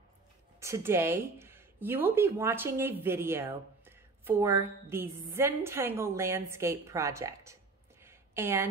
Today, you will be watching a video for the Zentangle landscape project.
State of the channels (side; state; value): left; quieter; 3.8 dB